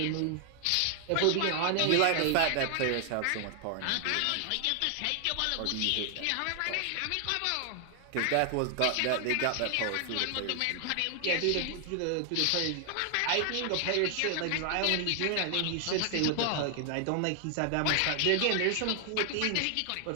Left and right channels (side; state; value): both; different; correlation 0.00